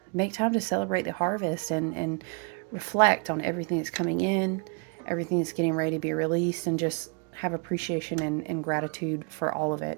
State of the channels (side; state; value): left; quieter; 35.4 dB